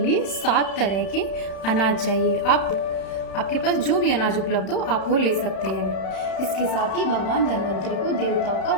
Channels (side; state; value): right; late; 31 ms